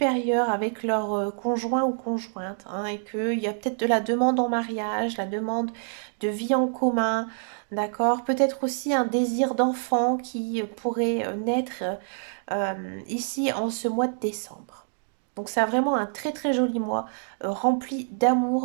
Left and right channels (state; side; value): silent; left; 59 dB below the other